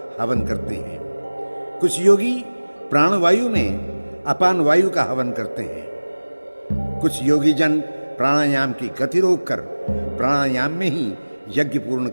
हवन करते हैं, कुछ योगी प्राणवायु में अपान वायु का हवन करते हैं, कुछ योगी जन प्राणायाम की गति रोककर प्राणायाम में ही यज्ञ पूर्ण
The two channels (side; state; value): both; inverted; correlation -1.00